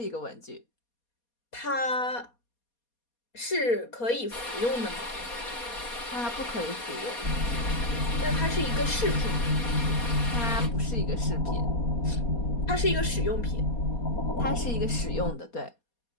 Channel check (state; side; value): late; right; 4.2 ms